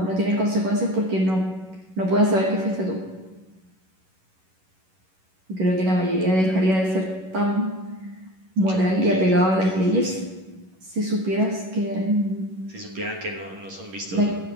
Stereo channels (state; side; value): late; left; 11 ms